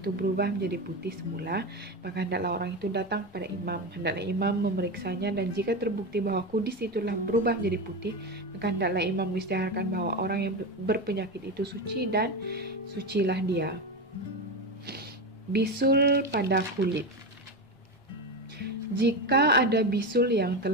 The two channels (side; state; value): both; normal; correlation 0.17